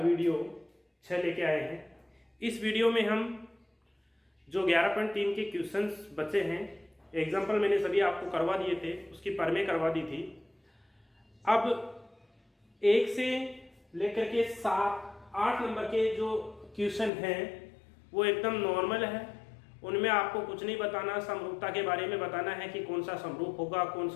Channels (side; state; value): right; drops out; at 17.1 s